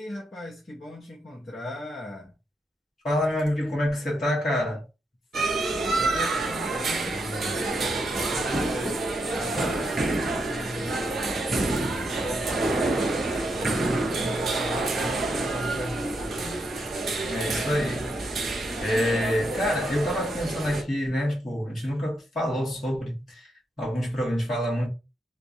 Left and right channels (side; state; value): both; normal; correlation 0.81